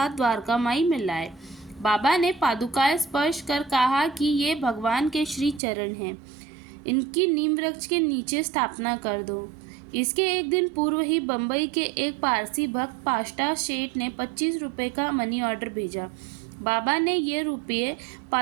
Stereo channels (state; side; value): drops out; left; at 5.6 s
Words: द्वारका माई में लाए। बाबा ने पादुकाएं स्पर्श कर कहा कि ये भगवान के श्री चरण हैं, इनकी नीम वृक्ष के नीचे स्थापना कर दो। इसके एक दिन पूर्व ही बंबई के एक पारसी भक्त पाष्टा शेठ ने 25 रुपये का मनी ऑर्डर भेजा। बाबा ने ये रुपये